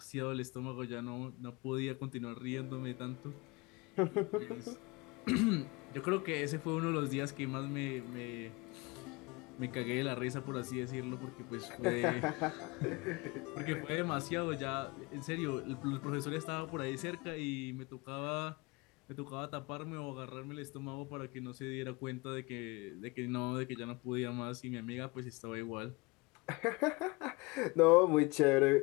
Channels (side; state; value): right; quieter; 25.7 dB